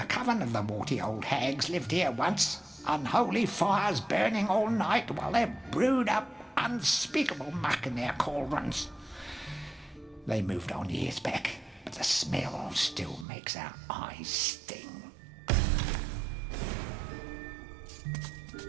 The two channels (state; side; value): drops out; left; at 13.2 s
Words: coven of the warty old hags lived here once, unholy fires burning all night while they brewed up unspeakable muck in their cauldrons. They moved on years back, but the smell still makes our eyes sting.